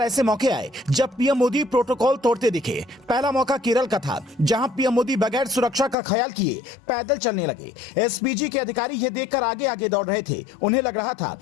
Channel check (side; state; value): right; drops out; at 6.0 s